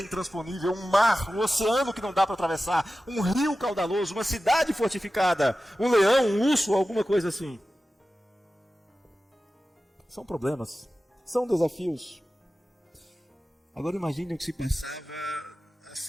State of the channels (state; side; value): normal; both; correlation 0.94